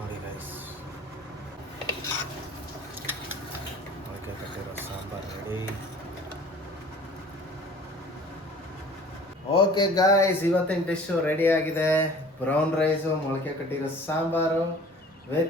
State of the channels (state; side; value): normal; both; correlation 0.48